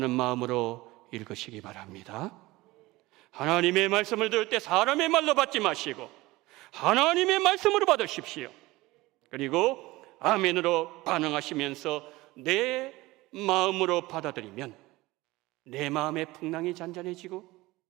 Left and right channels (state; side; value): quieter; left; 20.0 dB